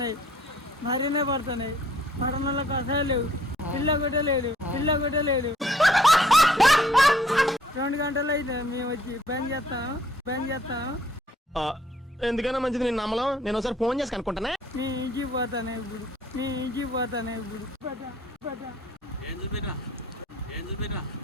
మరీనే పడుతున్నాయి. పడనలకు అసలు లేవు, పిల్ల కూడా లేదు, పిల్ల కూడా లేదు. 2 గంటలు అయితే మేము వచ్చి బంద్ చేస్తాం. ఎందుకైనా మంచిది నేను నమ్మలం. నేను ఒకసారి ఫోన్ చేసి కనుక్కుంటానే. నీ ఇంటికి పోతానే ఇప్పుడు,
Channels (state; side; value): normal; both; correlation 0.61